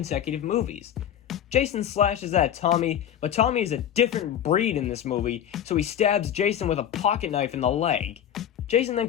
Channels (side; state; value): right; quieter; 10.1 dB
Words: movies. Jason slashes at Tommy, but Tommy is a different breed in this movie, so he stabs Jason with a pocket knife in the leg. Jason then